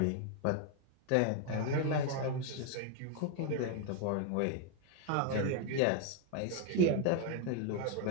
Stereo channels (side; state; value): both; different; correlation 0.00